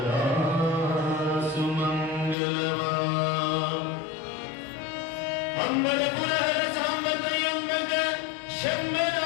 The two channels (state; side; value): drops out; right; at 2.4 s